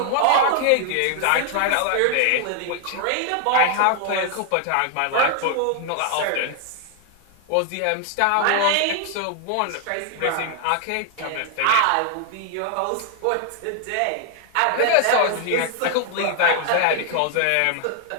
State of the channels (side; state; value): both; different; correlation 0.00